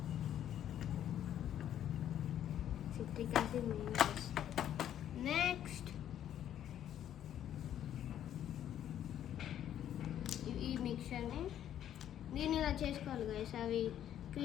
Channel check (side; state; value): right; quieter; 10.7 dB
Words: Citric acid main guys. Next ఈ మిక్చర్ని నేను ఇలా చేసుకోవాలి గైస్. అవి